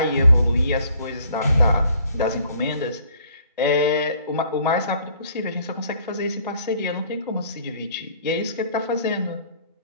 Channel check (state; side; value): inverted; both; correlation -0.59